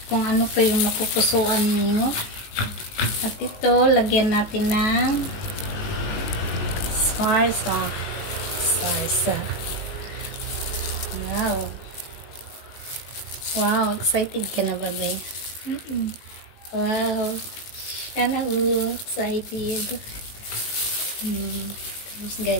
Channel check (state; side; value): late; right; 18 ms